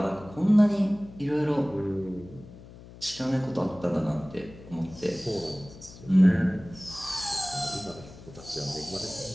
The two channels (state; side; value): noise; left; hum, 18 dB below the sound